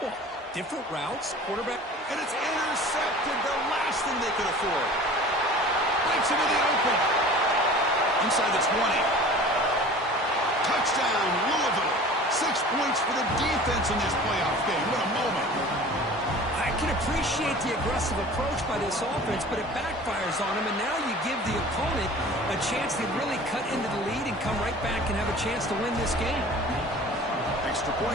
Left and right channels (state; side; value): normal; both; correlation 0.42